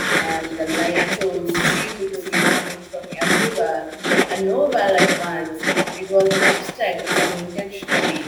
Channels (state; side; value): identical; both; correlation 1.00